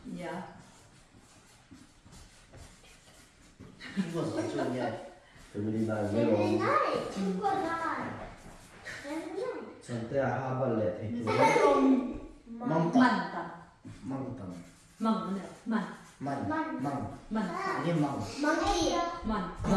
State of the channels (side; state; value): both; identical; correlation 1.00